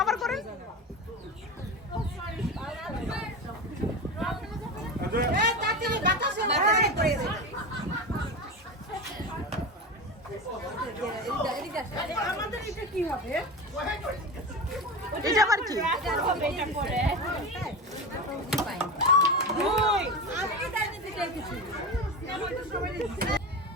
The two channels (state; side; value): normal; both; correlation 0.24